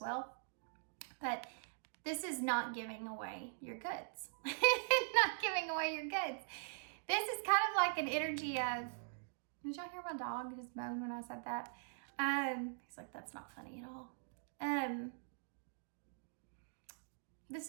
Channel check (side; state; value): left; silent; digital silence